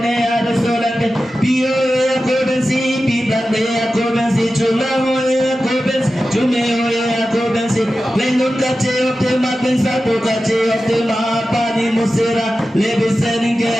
ar solande pio akobensi pidande akobensi chulamoe akobens chumeoe akobensi lengon kache opte magben sato kache opte ma pani musira le listening ke.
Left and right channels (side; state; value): both; normal; correlation 0.93